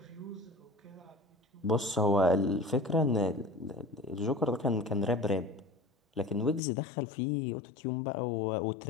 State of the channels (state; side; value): drops out; right; at 6.6 s